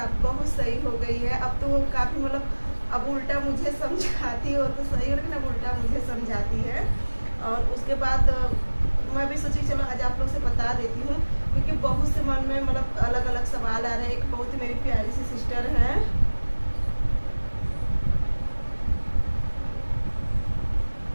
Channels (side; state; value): both; inverted; correlation -1.00